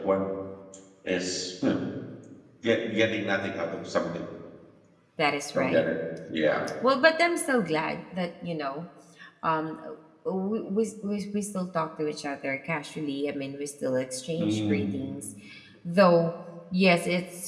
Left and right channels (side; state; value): both; identical; correlation 1.00